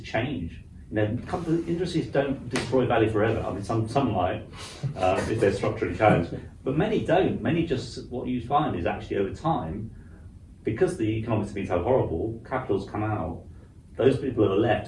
You know, industries don't destroy value forever. I mean, some might if they're structurally challenged, but many don't. Many just, what you find is actually over time, because the economics have been so horrible, capital's come out. Those people that are left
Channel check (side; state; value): both; identical; correlation 1.00